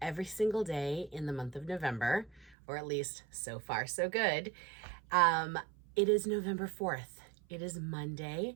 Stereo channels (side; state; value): left; drops out; at 2.6 s